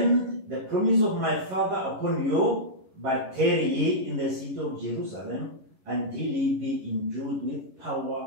the promise of my Father upon you, but tarry ye in the city of Jerusalem until ye be endued with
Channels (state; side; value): late; left; 11 ms